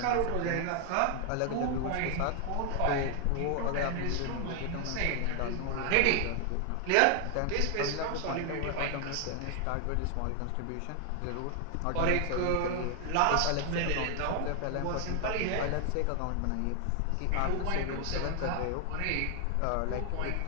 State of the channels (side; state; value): both; different; correlation 0.00